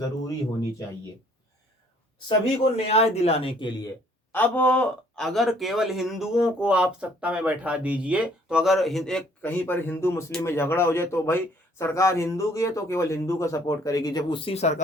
होनी चाहिए सभी को न्याय दिलाने के लिए। अब अगर केवल हिंदुओं को आप सत्ता में बैठा दीजिए तो अगर एक कहीं पर हिंदू मुस्लिम में झगड़ा हो जाए तो भाई सरकार हिंदू की है तो केवल हिंदू का सपोर्ट करेगी। जब उसी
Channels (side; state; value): both; normal; correlation 0.60